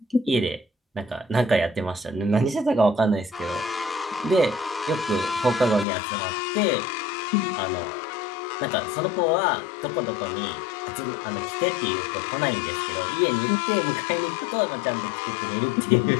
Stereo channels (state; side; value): drops out; right; at 5.9 s